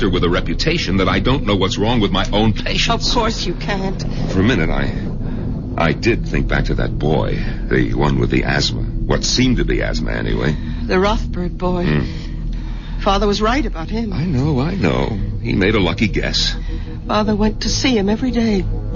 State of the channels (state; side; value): identical; both; correlation 1.00